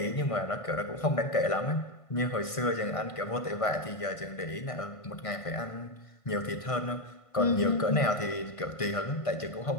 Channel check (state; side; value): late; right; 1.5 ms